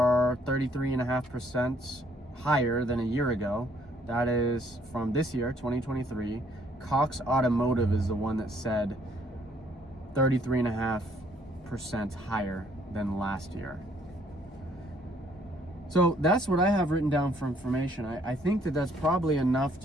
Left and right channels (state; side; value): normal; both; correlation 0.65